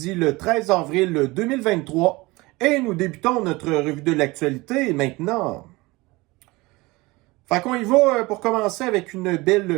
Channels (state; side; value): quieter; left; 22.3 dB